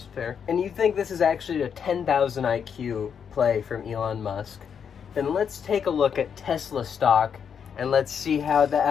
fair, and you think this is actually a 10,000 IQ play from Elon Musk, then let's take a look at Tesla stock and let's see how that,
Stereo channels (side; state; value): right; quieter; 7.3 dB